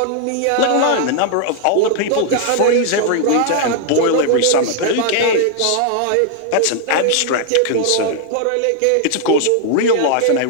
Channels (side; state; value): both; different; correlation 0.00